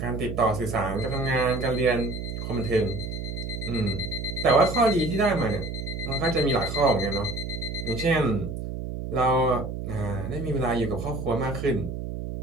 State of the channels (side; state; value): right; noise; hum, 6 dB below the sound